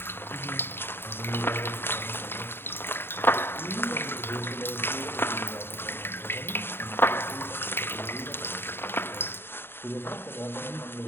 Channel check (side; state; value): right; late; 0.11 ms